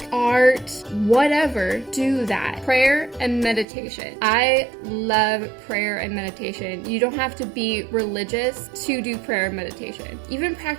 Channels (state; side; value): drops out; left; at 3.7 s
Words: art, whatever, do that. Prayer and meditation. I love prayer and meditation. You don't have to be religious to do prayer and meditation. Even